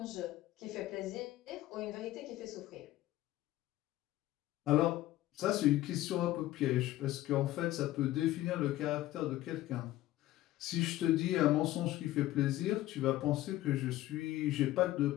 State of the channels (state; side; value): quieter; right; 15.4 dB